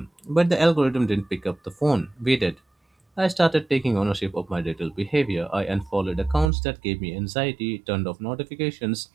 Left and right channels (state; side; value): drops out; left; at 6.5 s